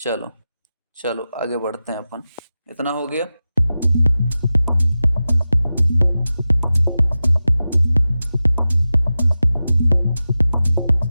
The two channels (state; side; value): inverted; both; correlation -0.94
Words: चलो आगे बढ़ते हैं अपन, इतना हो गया।